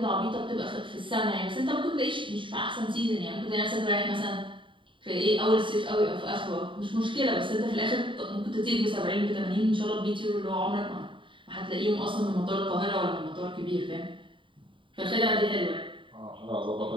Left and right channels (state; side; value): late; left; 0.24 ms